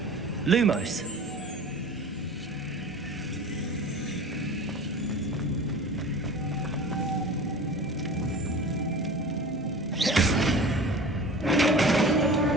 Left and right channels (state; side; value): normal; both; correlation 0.38